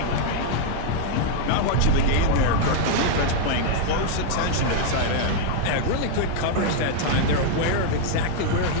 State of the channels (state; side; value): different; both; correlation 0.00